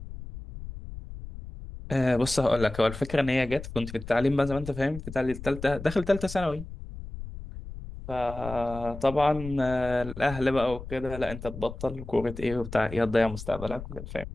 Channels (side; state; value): left; noise; rumble, 11 dB below the sound